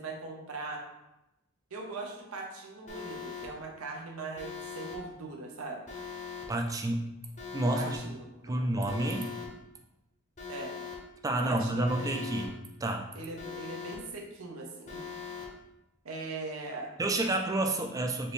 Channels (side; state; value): both; normal; correlation 0.49